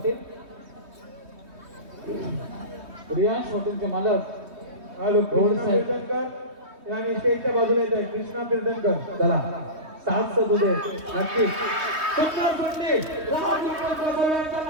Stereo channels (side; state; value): left; late; 3.2 ms